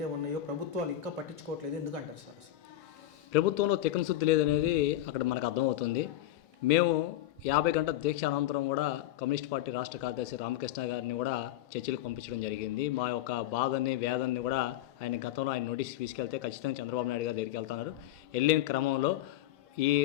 ఉన్నాయో ప్రభుత్వాలు ఇంకా పట్టించుకోవట్లేదు. ఎందుకంటారు సార్? అసలు ప్రభుత్వంలో తిక్కన శుద్ధి లేదనేది అక్కడ మనకు అర్థమవుతుంది. మేము 50 గంటల దీక్ష అనంతరం కూడా కమ్యూనిస్ట్ పార్టీ రాష్ట్ర కార్యదర్శి రామకృష్ణ గారిని కూడా చర్చలకు పంపించడం జరిగింది. మా యొక్క బాధని వేదనని కూడా ఆయన గతంలో ఆయన నోటీస్ తీసుకెళ్తే ఖచ్చితంగా చంద్రబాబు నాయుడు గారి దగ్గరికి వెళ్తున్నారు. వెళ్ళిన క్రమంలో ఈ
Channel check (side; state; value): right; quieter; 13.7 dB